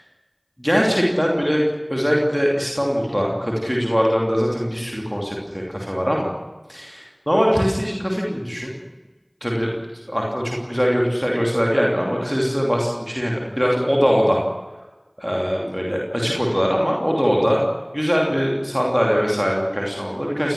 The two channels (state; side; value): identical; both; correlation 1.00